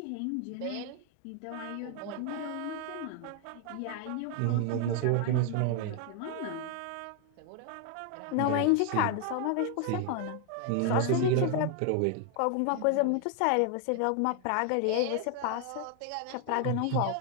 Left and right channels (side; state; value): both; different; correlation 0.00